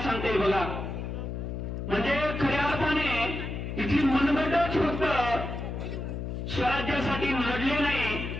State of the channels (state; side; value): noise; left; hum, 5 dB below the sound